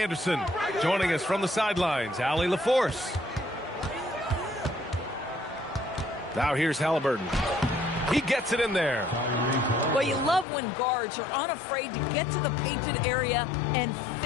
Joining us from the sidelines, Ali LaForce. Now here's Halliburton. He gets it in there. Well, you love when guards are unafraid to get to the painted area and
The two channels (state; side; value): drops out; right; at 10.5 s